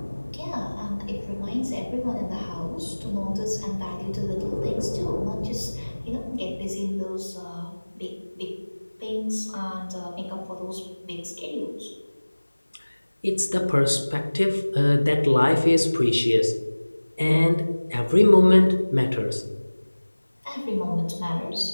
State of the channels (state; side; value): inverted; both; correlation -1.00